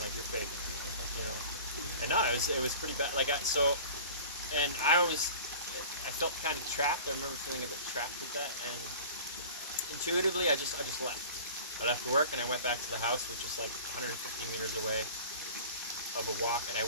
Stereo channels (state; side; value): inverted; both; correlation -0.40